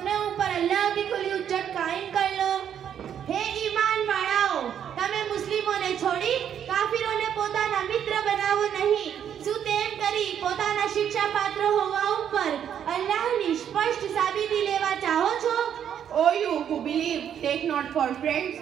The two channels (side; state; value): left; quieter; 9.1 dB